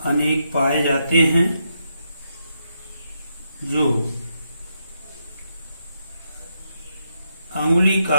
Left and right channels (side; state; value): both; inverted; correlation -0.81